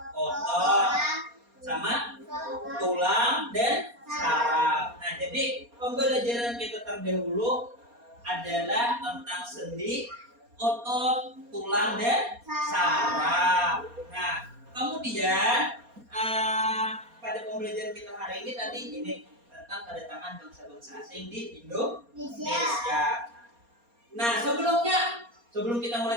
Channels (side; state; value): left; late; 4.2 ms